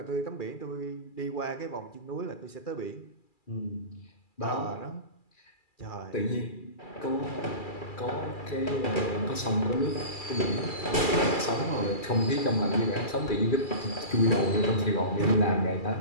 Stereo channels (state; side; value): late; right; 2.4 ms